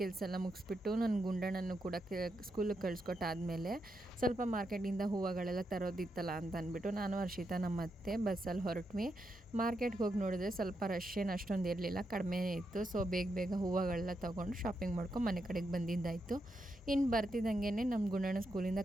ಕೆಲಸ ಎಲ್ಲ ಮುಗಿಸ್ಬಿಟ್ಟು ನನ್ನ ಗುಂಡಣ್ಣನ್ನು ಕೂಡ ಸ್ಕೂಲಿಗೆ ಕಳಿಸ್ಕೊಟ್ಟಾದಮೇಲೆ ಸ್ವಲ್ಪ ಮಾರ್ಕೆಟಿಂದ ಹೂವುಗಳೆಲ್ಲ ತರೋದಿತ್ತಲ್ಲ ಅಂತ ಅಂದ್ಬಿಟ್ಟು ನಾನು ಹರ್ಷಿತಾ ನಮ್ಮ ಅತ್ತೆ ಬಸ್ಸಲ್ಲಿ ಹೊರಟ್ವಿ. ಮಾರ್ಕೆಟ್ಗೆ ಹೋಗಿ ನೋಡಿದ್ರೆ ಸ್ವಲ್ಪ ರಶ್ ಏನು ಅಷ್ಟೊಂದು ಇರಲಿಲ್ಲ, ಕಡಿಮೆ ಇತ್ತು. ಸೊ ಬೇಗ ಹೂವುಗಳೆಲ್ಲ ತೊಗೊಂಡು ಶಾಪಿಂಗ್ ಮಾಡ್ಕೊಂಡು ಮನೆ ಕಡೆಗೆ ಬಂದಿದ್ದಾಯಿತು. ಇನ್ನು ಬರ್ತಿದ್ದಂಗೆ ನಮ್ಮ ಗುಂಡಣ್ಣ ಸ್ಕೂಲಿಂದ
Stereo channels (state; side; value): normal; both; correlation 0.83